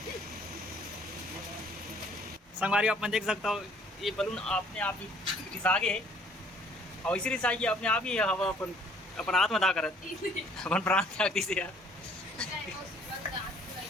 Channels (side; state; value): both; normal; correlation 0.58